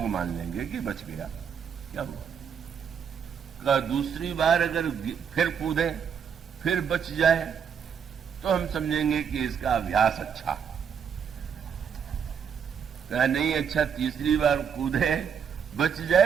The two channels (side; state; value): left; quieter; 7.3 dB